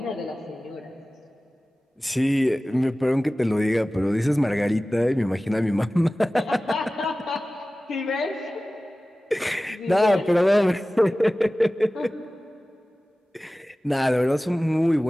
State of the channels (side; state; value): both; normal; correlation 0.97